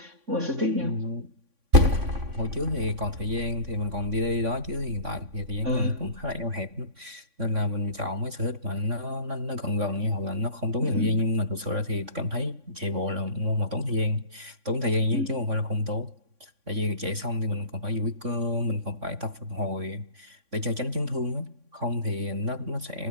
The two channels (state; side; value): late; left; 3.6 ms